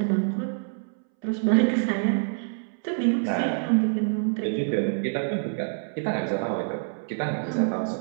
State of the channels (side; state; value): left; silent; 61 dB below the other